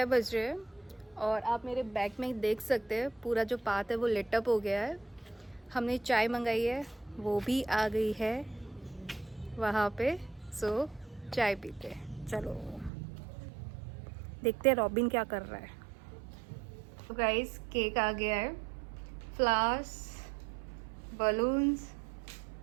बज रहे हैं और आप मेरे बैग में देख सकते हैं पूरा जो पाथ है वो लिट अप हो गया है। हमने चाय मंगाई है, वो भी आ गई है वहाँ पे। सो चाय पीते हैं, चलो देखते हैं रॉबिन क्या कर रहा है। तो गाइस केक आ गया है, फ्लावर्स, बलून्स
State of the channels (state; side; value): drops out; left; at 12.9 s